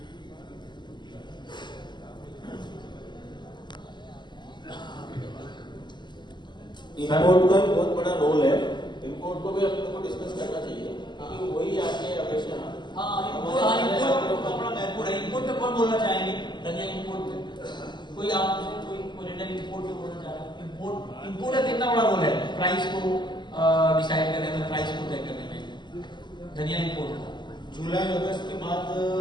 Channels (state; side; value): late; right; 0.21 ms